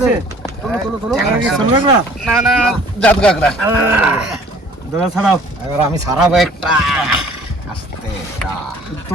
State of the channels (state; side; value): normal; both; correlation 0.53